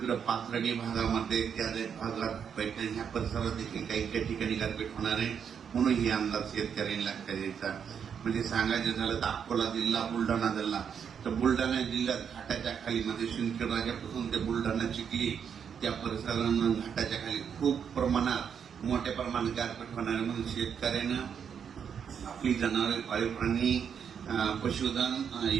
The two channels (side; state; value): left; quieter; 7.5 dB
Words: पाथर्डी भागामध्ये, त्या भागात पैठण ह्या परिसरात देखील काही ठिकाणी गारपीट होणार आहे. म्हणून हे अंदाज शेतकऱ्यांनी लक्षात द्यायचा. म्हणजे सांगायचं झालं तर अकोला जिल्हा, बुलढाणा जिल्हा, तर बुलढाणा जिल्ह्यात घाटाच्या खाली म्हणजे शिंदखेड राजापासून ते बुलढाणा, चिखली त्या परिसरांना घाटाच्या खाली खूप प्रमाणात मोठ्या प्रमाणात गारपीट होणार आहे. म्हणून शेतकऱ्यानं आपली जनावरे, पाळीव प्राणी, पशुधन